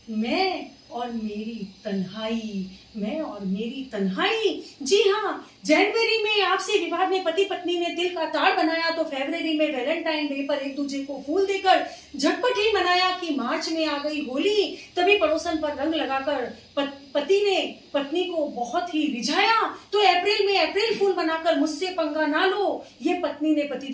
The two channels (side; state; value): both; identical; correlation 1.00